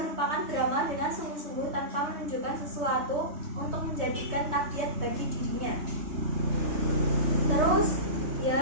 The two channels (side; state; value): left; late; 3.2 ms